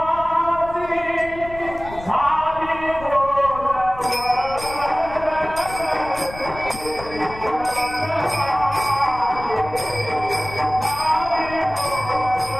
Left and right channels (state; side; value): noise; left; rumble, 15 dB below the sound